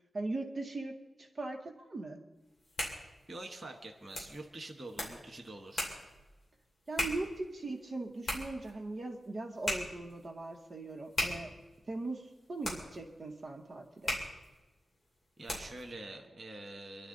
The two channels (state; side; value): normal; both; correlation 0.90